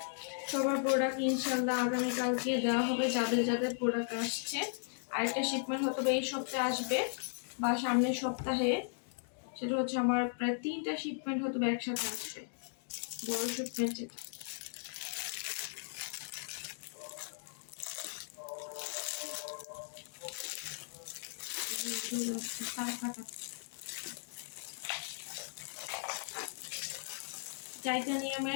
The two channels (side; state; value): right; silent; digital silence